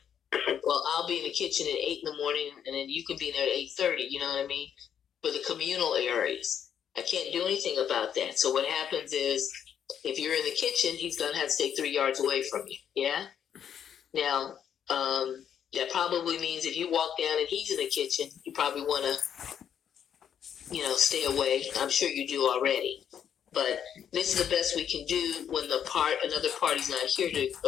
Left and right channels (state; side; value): quieter; right; 8.8 dB